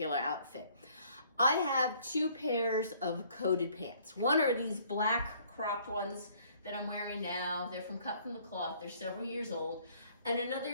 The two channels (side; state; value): both; inverted; correlation -0.60